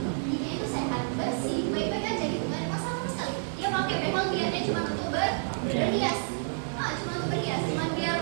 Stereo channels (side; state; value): left; silent; digital silence